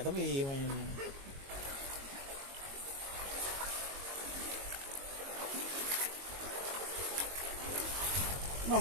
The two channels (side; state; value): left; late; 22 ms